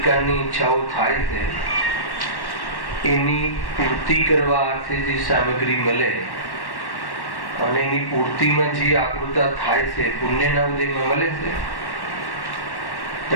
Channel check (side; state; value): right; late; 1.1 ms